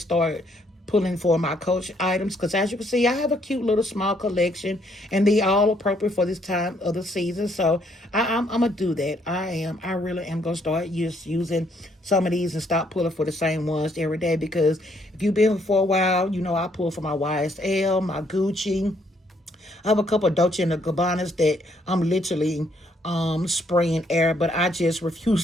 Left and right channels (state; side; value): normal; both; correlation 0.69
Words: start pulling for my Coach items. Because as you can see, I have a cute little small collection and they all appropriate for this time of the season. So I'm going to do that. I really am going to start using some of these and stop pulling for the same ones every day. Because if you've been for a while, you know I pull for my YSL, my Gucci. I have a couple of Dolce and Gabbanas that I'm literally spraying air, but I just refuse